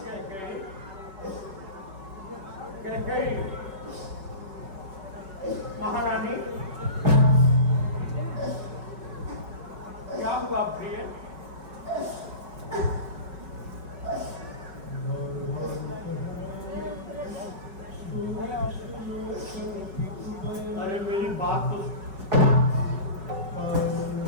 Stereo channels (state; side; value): late; left; 5.3 ms